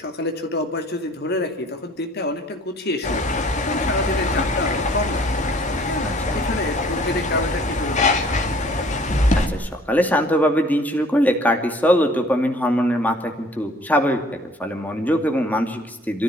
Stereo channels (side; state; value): both; normal; correlation 0.54